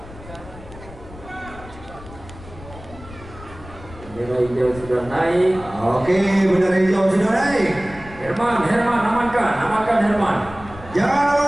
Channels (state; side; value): noise; left; rumble, 17 dB below the sound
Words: Bendera hijau sudah naik. Oke, bendera hijau sudah naik. Herman, amankan Herman. Jangan